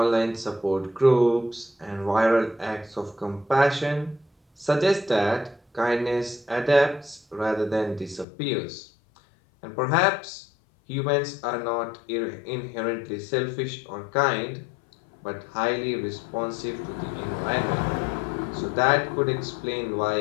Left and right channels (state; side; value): drops out; right; at 8.2 s